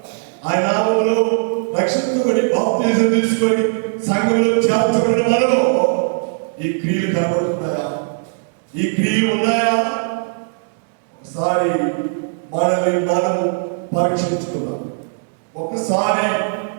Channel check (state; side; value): silent; left; digital silence